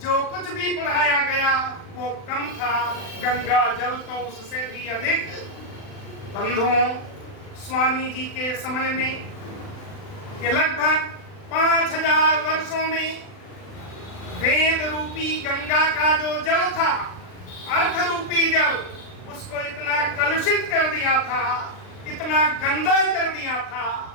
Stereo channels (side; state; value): right; late; 39 ms